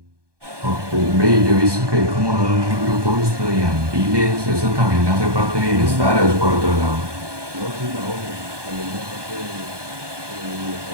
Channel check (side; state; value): left; late; 1.2 ms